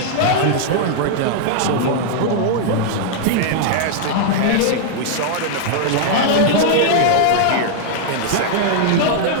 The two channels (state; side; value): different; both; correlation -0.01